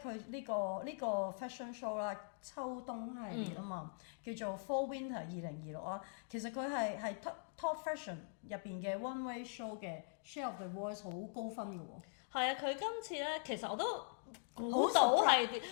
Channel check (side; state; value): right; silent; digital silence